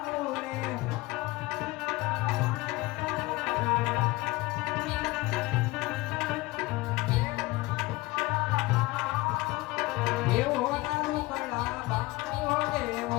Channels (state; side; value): quieter; right; 21.0 dB